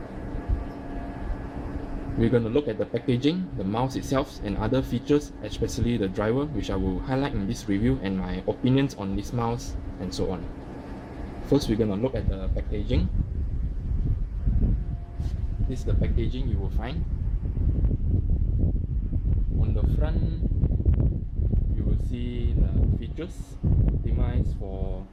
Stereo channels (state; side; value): identical; both; correlation 1.00